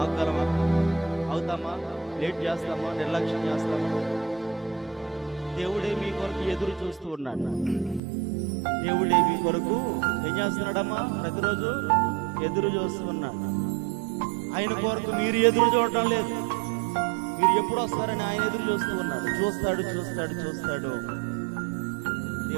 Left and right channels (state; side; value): drops out; left; at 8.0 s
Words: ఆగలమా? అవుతామా? లేట్ చేస్తామా? నిర్లక్ష్యం చేస్తామా? దేవుడే మీ కొరకు ఎదురు చూస్తూ ఉన్నాడు. దేవుడే మీ కొరకు ఏం చేస్తున్నాడమ్మా? ప్రతిరోజు ఎదురు చూస్తూ ఉన్నాడు. ఆయన కొరకు మీరు ఎదురు చూడటం లేదు. మీరు ఎప్పుడు వస్తారని ఆయన ఎదురు చూస్తూ ఉన్నాడు. చూస్తాడు.